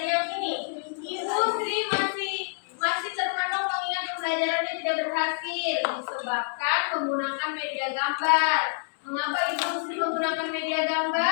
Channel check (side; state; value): right; silent; digital silence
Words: ini. Industri masih terpenuh mengingat pembelajarannya tidak berhasil disebabkan menggunakan media gambar. Mengapa industri menggunakan media